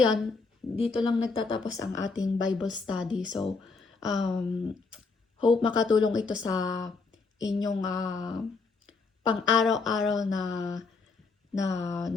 dito lang nagtatapos ang ating Bible study. So, hope makatulong ito sa inyong pang-araw-araw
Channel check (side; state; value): right; quieter; 4.3 dB